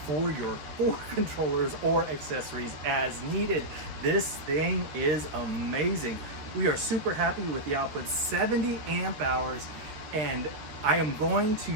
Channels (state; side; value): late; left; 13 ms